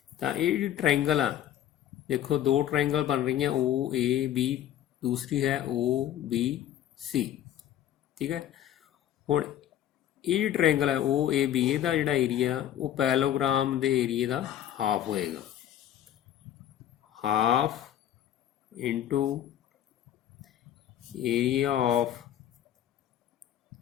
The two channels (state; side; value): quieter; right; 11.4 dB